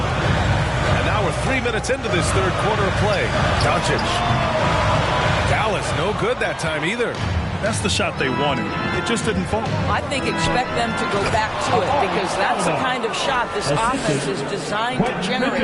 And now we're 3 minutes into this third quarter of play. Doncic. Dallas no good that time either. That's the shot they wanted. It just didn't fall. I think expect them to go back to it because that's the kind of shot this offense is designed to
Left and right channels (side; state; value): both; identical; correlation 1.00